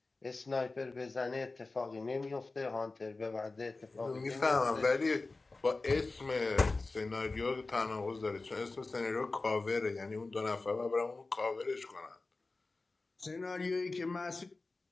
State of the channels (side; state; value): right; quieter; 3.5 dB